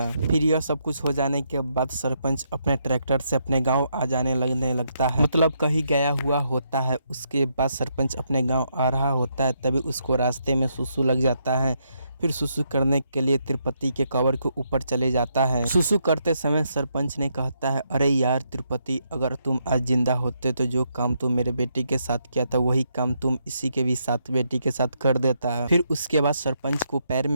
फिर यह सब कुछ हो जाने के बाद सरपंच अपने ट्रैक्टर से अपने गाँव आ जाने लगता है, मतलब कहीं गया हुआ होता है। उसके बाद सरपंच अपने गाँव आ रहा होता है, तभी उसको रास्ते में सुसु लग जाता है। फिर सुसु करने के लिए तिरुपति के कब्र के ऊपर चले जाता है। सुसु करते समय सरपंच ने कहता है, अरे यार तिरुपति, अगर तुम आज जिंदा होते तो जो काम तुम मेरे बेटी के साथ किया था वही काम तुम इसी के भी साथ बेटी के साथ कर देता है। फिर उसके बाद सरपंच को पैर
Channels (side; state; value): both; inverted; correlation -0.78